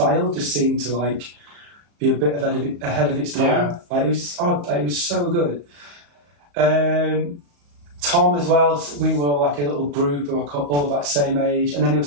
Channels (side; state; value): left; late; 35 ms